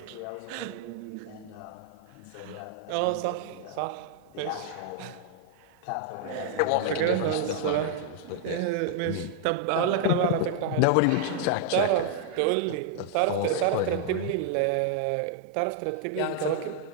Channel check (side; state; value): both; different; correlation -0.01